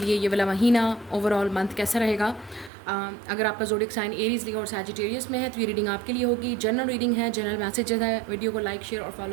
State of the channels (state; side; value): drops out; left; at 2.7 s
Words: लिए ये वाला महीना ओवरऑल मंथ कैसा रहेगा। अगर आपका ज़ोडिक साइन एरीज लियो और सैजिटेरियस में है तो ये रीडिंग आपके लिए होगी। जनरल रीडिंग है, जनरल मैसेजेस है। वीडियो को लाइक शेयर और